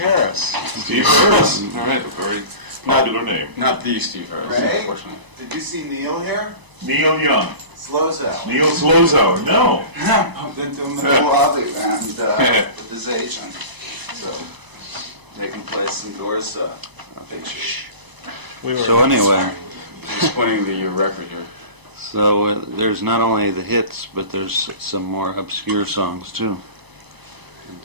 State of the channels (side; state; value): left; late; 1.0 ms